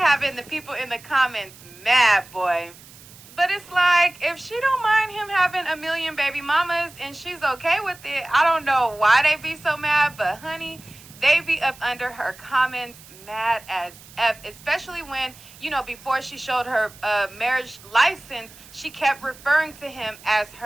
the people in the comments mad, boy. But it's like, if she don't mind him having a million baby mamas and she's okay with it, I don't know why they be so mad, but honey, they be up under her comments mad as F, especially when, before she showed her marriage license, she kept referring to him as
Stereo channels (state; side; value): noise; right; hiss, 21 dB below the sound